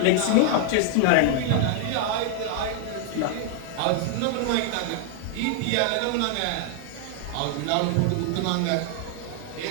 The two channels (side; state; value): both; different; correlation 0.00